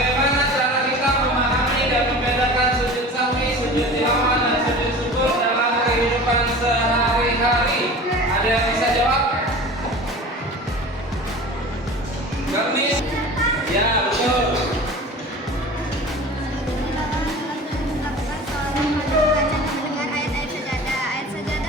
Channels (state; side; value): normal; both; correlation 0.38